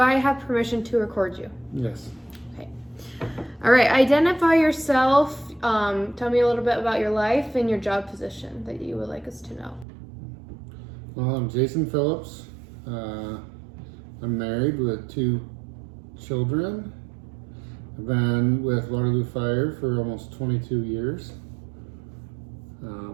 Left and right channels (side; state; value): left; drops out; at 9.9 s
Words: have permission to record you? Yes. Okay. All right, identify yourself. Tell me a little bit about your life and your job position that you would like us to know. Well, I'm Jason Phillips. I'm married with 2 children. I've been with Waterloo Fire for almost 22 years.